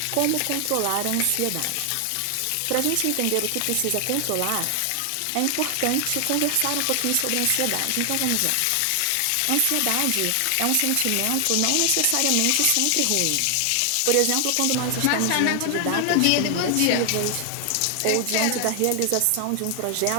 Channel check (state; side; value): different; both; correlation 0.00